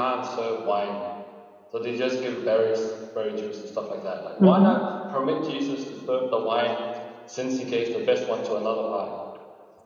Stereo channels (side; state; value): both; identical; correlation 1.00